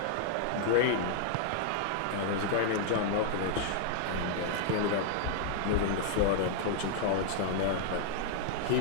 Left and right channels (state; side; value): different; both; correlation -0.01